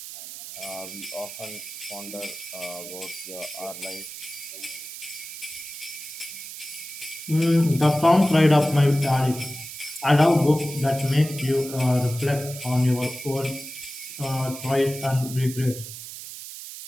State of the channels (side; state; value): right; noise; hiss, 11 dB below the sound